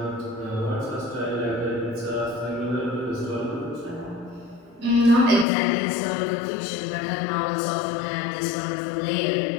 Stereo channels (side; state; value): right; drops out; at 5.5 s